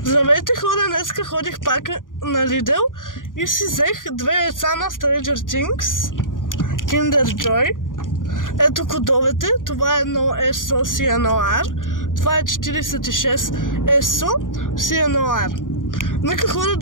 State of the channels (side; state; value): right; late; 0.89 ms